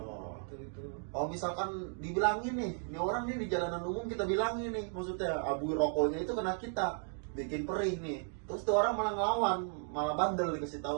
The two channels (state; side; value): silent; left; 54 dB below the other